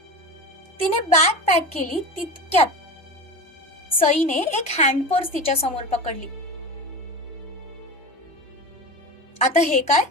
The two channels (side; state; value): both; normal; correlation 0.28